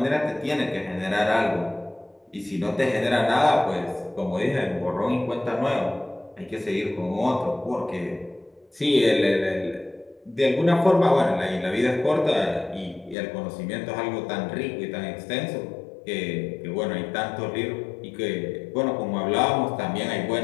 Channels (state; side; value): drops out; right; at 13.2 s